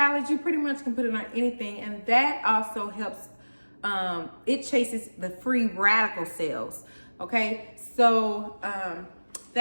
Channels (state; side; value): inverted; both; correlation -1.00